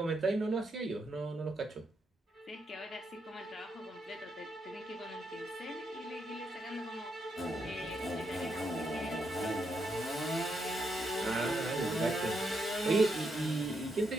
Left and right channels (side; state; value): both; normal; correlation 0.80